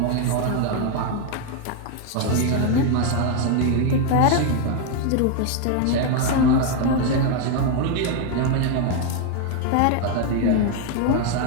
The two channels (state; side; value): different; both; correlation 0.01